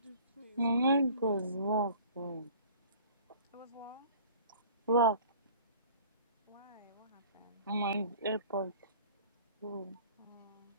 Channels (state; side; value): inverted; both; correlation -0.48